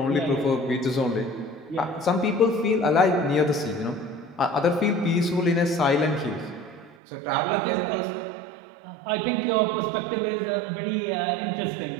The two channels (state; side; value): drops out; left; at 7.0 s